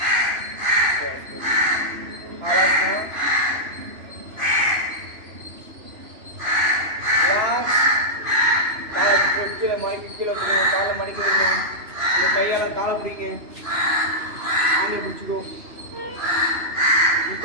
ஆலாசனம். Relax. காலை கீழே மடக்கி கீழே வைக்கணும். காலை மடக்கி வைக்கணும். உங்கள் கையால் காலை பிடிங்க. ஆண்டை பிடிச்சிக்கோ.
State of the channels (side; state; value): left; late; 3.0 ms